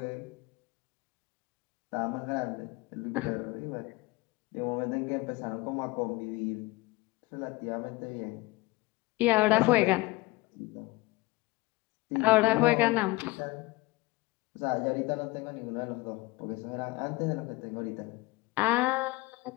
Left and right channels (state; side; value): quieter; right; 21.6 dB